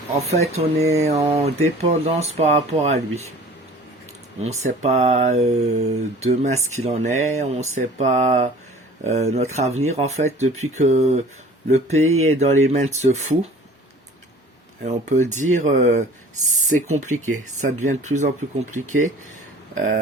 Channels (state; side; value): normal; both; correlation 0.46